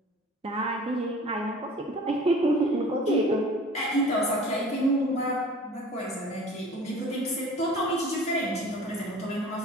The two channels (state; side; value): normal; both; correlation 0.44